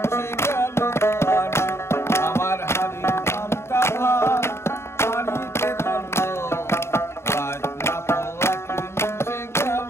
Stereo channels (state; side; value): late; right; 0.13 ms